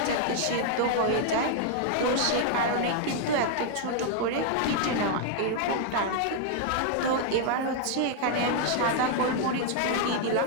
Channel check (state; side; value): different; both; correlation 0.00